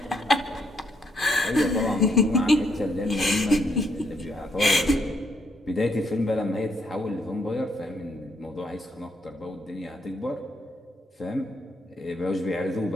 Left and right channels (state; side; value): normal; both; correlation 0.74